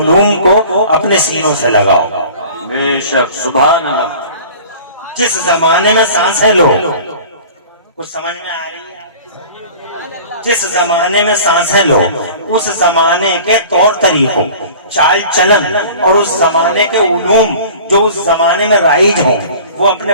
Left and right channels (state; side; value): inverted; both; correlation -0.43